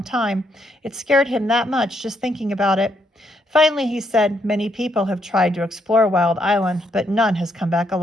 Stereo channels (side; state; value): both; normal; correlation 0.75